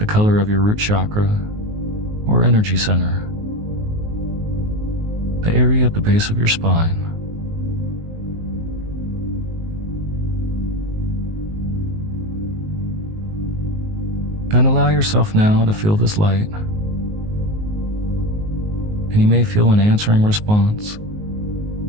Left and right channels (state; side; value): late; left; 19 ms